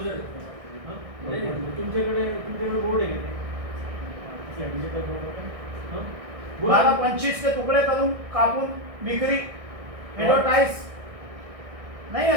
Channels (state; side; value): late; left; 1.6 ms